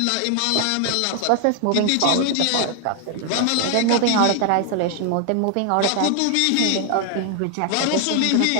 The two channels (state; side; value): different; both; correlation 0.00